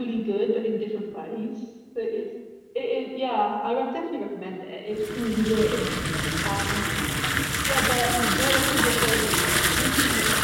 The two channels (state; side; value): identical; both; correlation 1.00